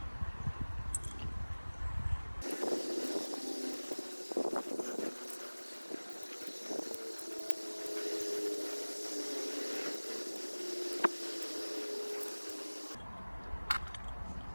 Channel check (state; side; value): inverted; both; correlation -1.00